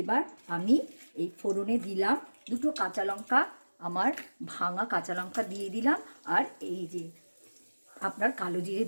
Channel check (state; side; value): inverted; both; correlation -1.00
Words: এবার আমি এই ফোড়নে দিলাম দুটো কাঁচা লঙ্কা, আমার ভাঙা কাঁচা লঙ্কা দিয়ে দিলাম, আর এই যে আপনার কালো জিরে